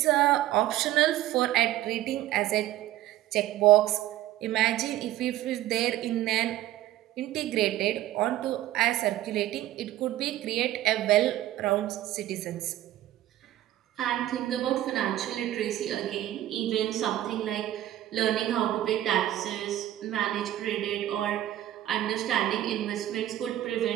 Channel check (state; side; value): quieter; left; 13.9 dB